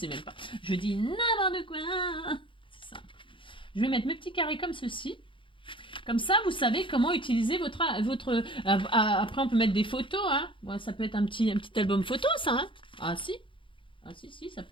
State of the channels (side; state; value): right; late; 0.25 ms